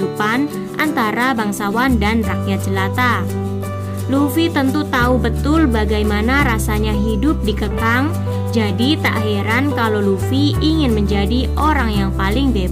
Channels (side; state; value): both; identical; correlation 1.00